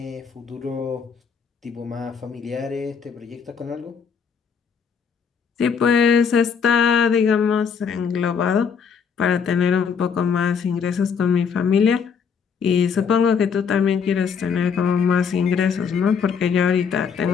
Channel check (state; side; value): quieter; right; 6.4 dB